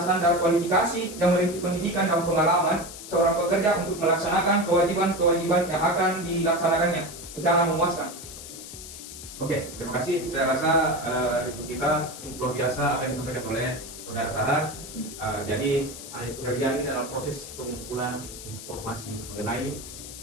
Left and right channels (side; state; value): left; noise; hiss, 12 dB below the sound